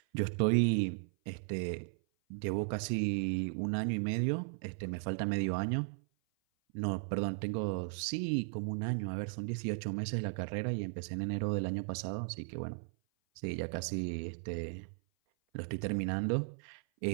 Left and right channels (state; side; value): silent; left; 54 dB below the other